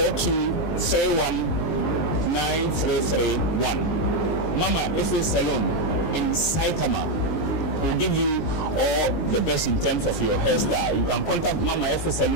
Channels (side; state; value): right; late; 19 ms